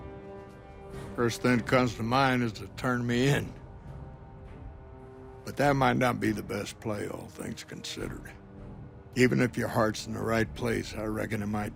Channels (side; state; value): both; identical; correlation 1.00